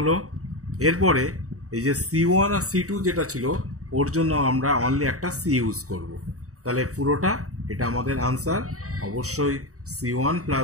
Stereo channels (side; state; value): left; late; 0.65 ms